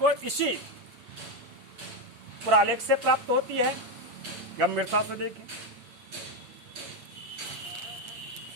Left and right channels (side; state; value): left; late; 8.5 ms